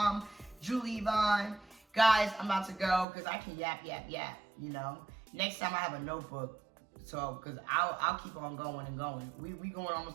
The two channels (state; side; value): drops out; left; at 3.1 s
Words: Julie Yvonne. Guys, I'm about to go because I can yap, you know. Next time I have a notebook. So, because I'll keep on going and going. We going